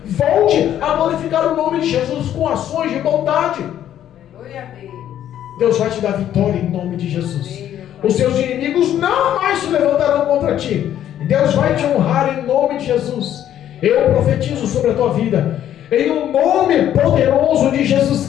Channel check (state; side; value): quieter; right; 11.0 dB